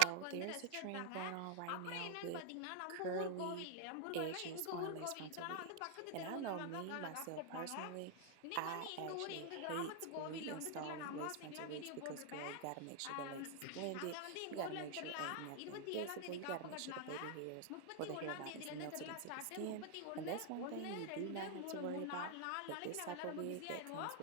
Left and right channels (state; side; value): different; both; correlation 0.00